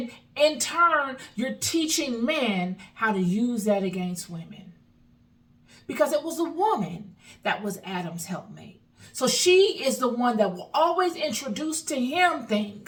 in turn, you're teaching men how to use that against women. Because it was a woman that was Adam's helpmate. So she is the one that will always introduce to him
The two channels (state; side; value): identical; both; correlation 1.00